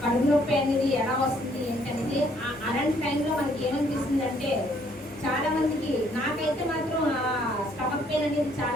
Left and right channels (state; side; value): normal; both; correlation 0.65